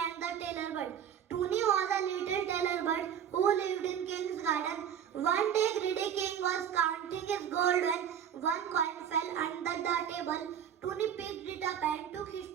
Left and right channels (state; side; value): quieter; left; 8.9 dB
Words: and the Tailor Bird. Toonie was a little tailor bird who lived in King's garden. One day greedy King was counting his gold when one coin fell under the table. Toonie picked it up and took